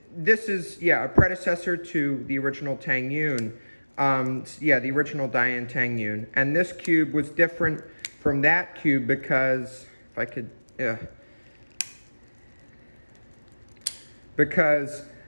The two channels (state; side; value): inverted; both; correlation -1.00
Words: this is, a predecessor to the original TengYun. The original Dayan TengYun. And this cube was different from that cube because, because